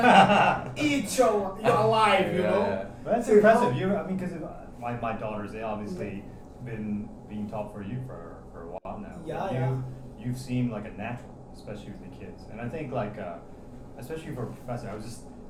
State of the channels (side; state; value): both; identical; correlation 1.00